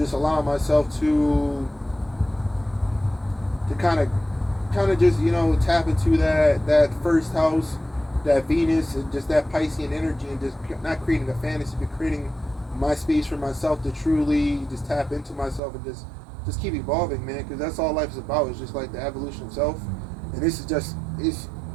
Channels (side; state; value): left; drops out; at 15.6 s